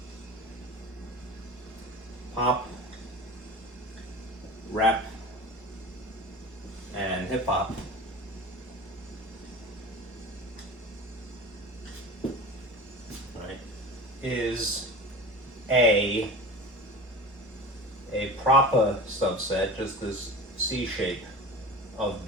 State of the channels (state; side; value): normal; both; correlation 0.34